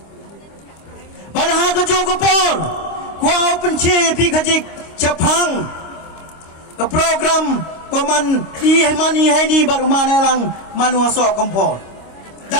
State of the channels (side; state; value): right; late; 25 ms